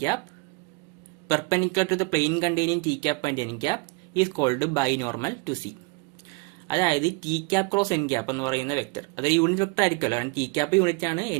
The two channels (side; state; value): left; quieter; 27.6 dB